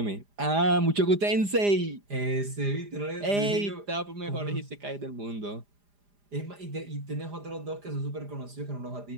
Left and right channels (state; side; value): late; left; 4.9 ms